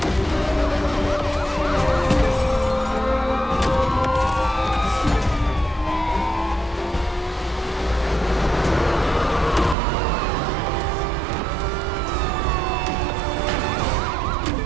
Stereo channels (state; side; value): drops out; left; at 9.8 s